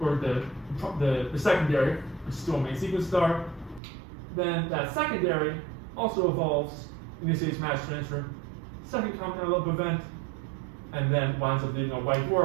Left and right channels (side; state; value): left; drops out; at 3.8 s